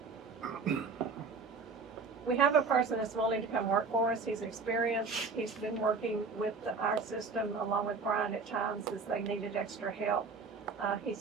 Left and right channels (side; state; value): left; quieter; 4.6 dB